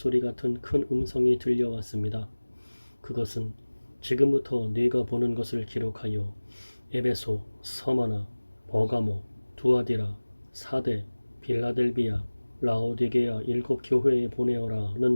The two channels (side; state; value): both; inverted; correlation -1.00